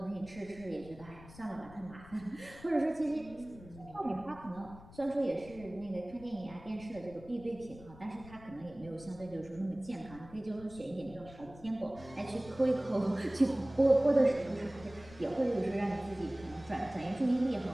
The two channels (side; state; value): left; noise; rumble, 19 dB below the sound